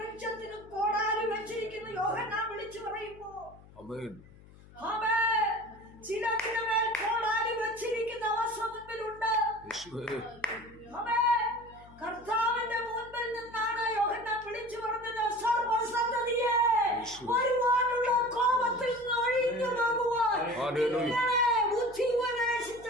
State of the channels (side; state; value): left; noise; hum, 22 dB below the sound